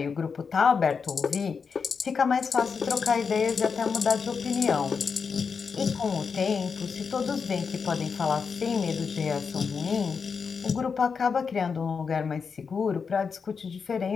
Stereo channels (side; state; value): right; quieter; 5.7 dB